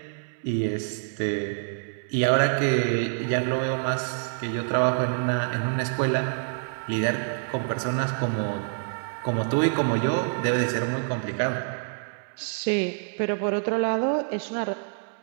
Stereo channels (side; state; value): left; silent; 60 dB below the other